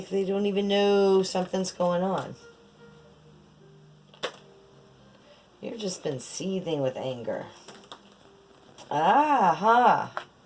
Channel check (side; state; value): both; identical; correlation 1.00